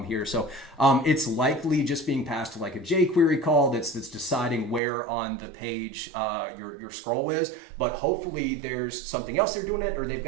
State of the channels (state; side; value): drops out; left; at 4.8 s